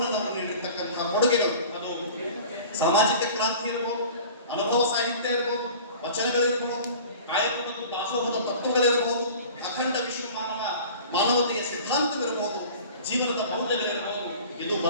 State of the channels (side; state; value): both; inverted; correlation -0.42